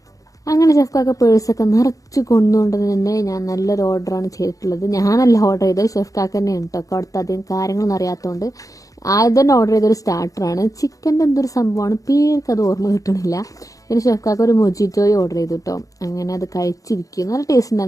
അങ്ങനെ ഷെഫ്ക്കൊക്കെ പേഴ്സൊക്കെ നിറച്ച് കൊണ്ടുകൊണ്ട് തന്നെ ഞാൻ നല്ലൊരു ഓർഡറാണ് ചെയ്തിട്ടുള്ളത്. ഞാനല്ല ഓർഡർ ചെയ്തത്, ഷെഫ്ക്കാക്ക് തന്നെയാണ് കേട്ടോ. അവിടുത്തെ അധികം കാര്യങ്ങളൊന്നും അറിയാത്തതുകൊണ്ട് ആദ്യം തന്നെ ഓർഡർ ചെയ്തൊരു സ്റ്റാർട്ടറാണ്. ചിക്കൻ്റെ എന്തൊരു സംഭവമാണ്, പേർക്ക് അത് ഓർമ്മ കിട്ടണില്ല. പിന്നെ ഷെഫ്ക്കാക്ക് ഒരു മൊജിറ്റോയും ഓർഡർ ചെയ്തു കേട്ടോ. അങ്ങനെ അത് കഴിച്ചിരിക്കും. നല്ല ടേസ്റ്റ്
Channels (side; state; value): right; late; 0.17 ms